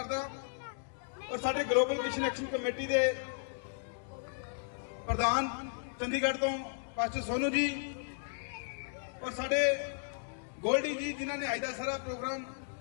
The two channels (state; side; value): silent; right; digital silence